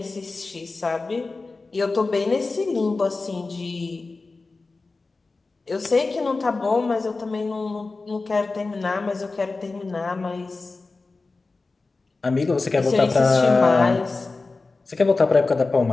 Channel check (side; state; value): right; quieter; 3.7 dB